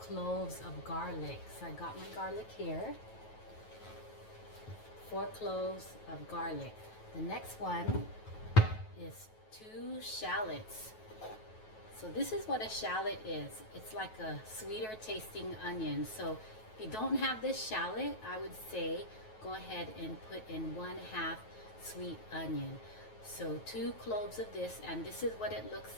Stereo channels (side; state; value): right; late; 9.2 ms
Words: of garlic. So I got my garlic here. 4 cloves of garlic. The next one is 2 shallots. So this is what a shallot is. It's like a sweeter tasting onion. So if you don't have this shallot, I would say go ahead and put in 1/2 sweet onion. So 2 cloves of this, and this is what it looks